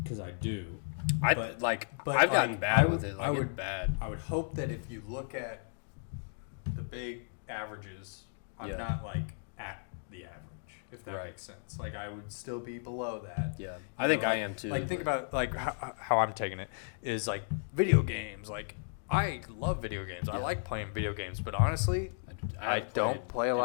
because I do. I've but gotten like, bad with it. Like, I would it's bad. I would hope that if you look at the big averages, I'm Yeah. not like at the average, if that Right. makes sense. Like I would still be below that. Yeah, You I think know, I like- am too. Like think but- about like how I'm taking it is like video games. Like I love video games. I Yeah. like playing video games, but honestly, I haven't don't played play a in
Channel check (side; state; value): right; silent; digital silence